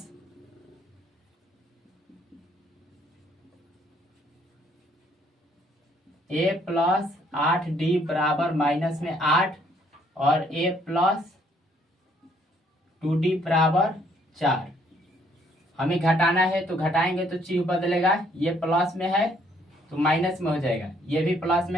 8D बराबर -8 और A + 2D बराबर 4। हमें घटाना है तो घटाएंगे तो चिन्ह बदलेगा, ये प्लस में है तो माइनस में हो जाएगा, ये भी प्लस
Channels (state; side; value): normal; both; correlation 0.66